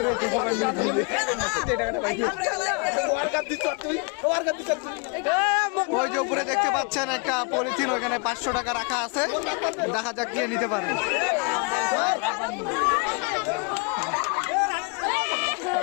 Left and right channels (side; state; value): right; quieter; 32.4 dB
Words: ওই যে উপরে দেখতে পাচ্ছেন একটা পলিথিন, ওইখানে 500 টাকা রাখা আছে, দেখা যাক কে নিতে পারে।